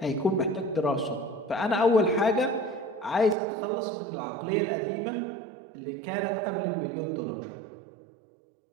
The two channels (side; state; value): left; drops out; at 3.4 s